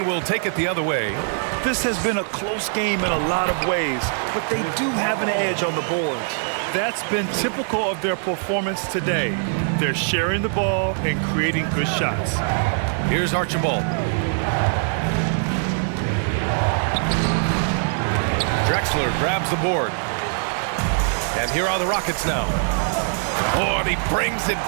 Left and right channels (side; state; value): left; silent; digital silence